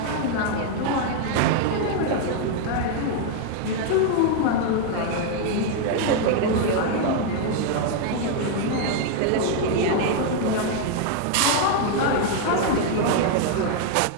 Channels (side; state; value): both; different; correlation 0.00